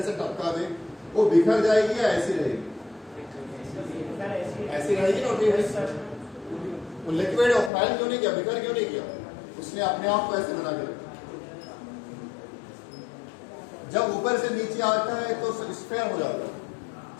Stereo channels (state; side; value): drops out; right; at 7.7 s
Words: से टपका दे, वो बिखर जाएगी या ऐसी रहेगी, ऐसी रहेगी ना, वो लिक्विड और फैल क्यों नहीं किया, बिखर क्यों नहीं किया, उसने अपने आप को ऐसे बना के रखा। जब ऊपर से नीचे आता है तो स्फीयर हो जाता है,